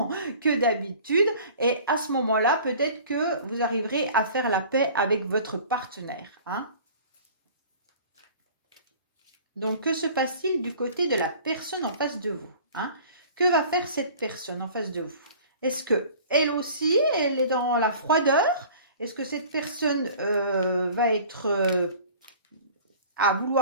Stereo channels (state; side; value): inverted; both; correlation -0.46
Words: que d'habitude, et à ce moment-là, peut-être que vous arriverez à faire la paix avec votre partenaire, hein. Donc, que se passe-t-il du côté de la personne en face de vous, hein? Que va faire cette personne en face de vous? Est-ce que elle aussi, elle est dans la froideur? Est-ce que cette personne va être à